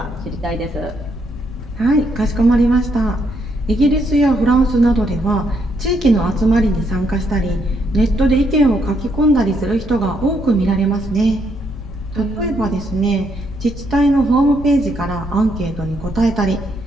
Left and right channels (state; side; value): noise; left; rumble, 14 dB below the sound